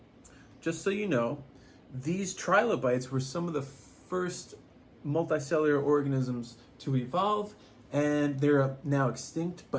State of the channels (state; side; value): identical; both; correlation 1.00